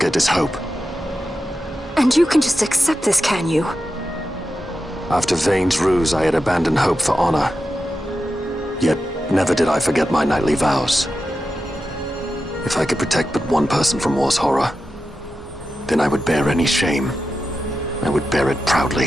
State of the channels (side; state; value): both; normal; correlation 0.90